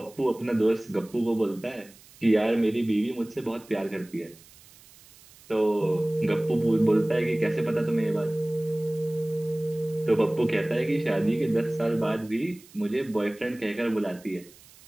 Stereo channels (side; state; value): right; noise; hiss, 24 dB below the sound